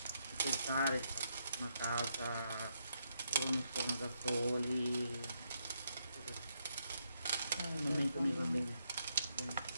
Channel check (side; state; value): both; inverted; correlation -0.79